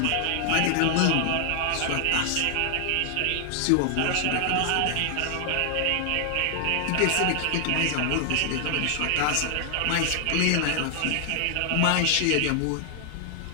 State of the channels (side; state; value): both; different; correlation 0.00